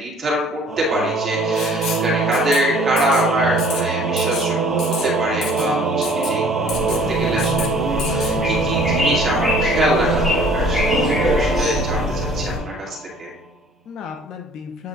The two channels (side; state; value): both; normal; correlation 0.53